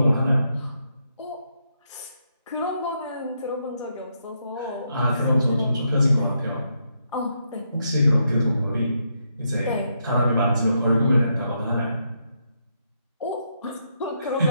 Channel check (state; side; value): inverted; both; correlation -0.79